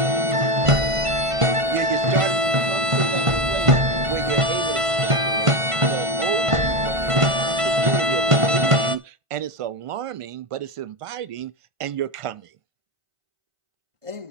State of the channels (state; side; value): late; left; 1.5 ms